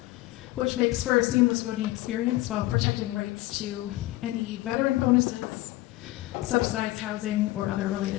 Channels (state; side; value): quieter; right; 18.0 dB